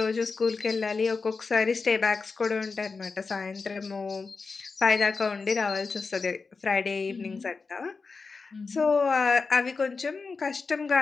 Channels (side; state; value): right; quieter; 4.5 dB